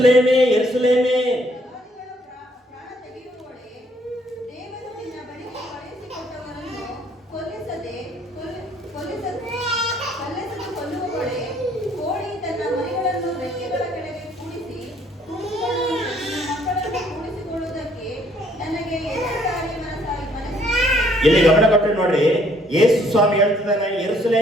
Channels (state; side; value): normal; both; correlation 0.64